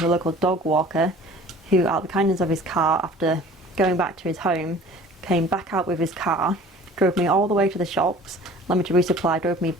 a local dog walker who, out of the kindness of his car, after going back to his home, came back out with his car, drove me all the way to the shops, allowed me to resupply, drove me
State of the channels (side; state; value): both; normal; correlation 0.46